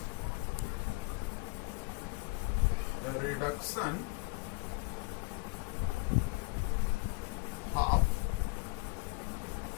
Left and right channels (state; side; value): quieter; right; 28.2 dB